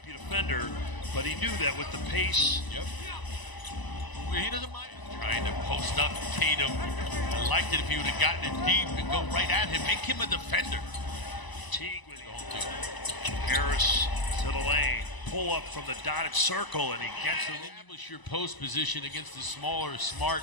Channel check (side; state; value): right; late; 1.0 ms